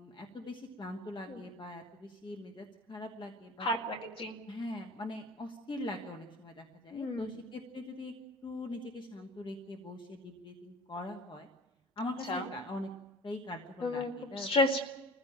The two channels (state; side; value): normal; both; correlation 0.41